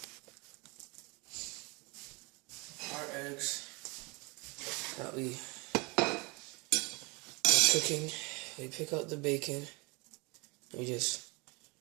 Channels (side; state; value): left; quieter; 28.4 dB